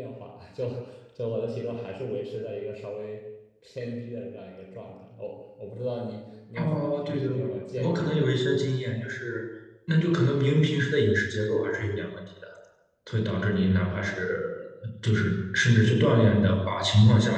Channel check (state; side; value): identical; both; correlation 1.00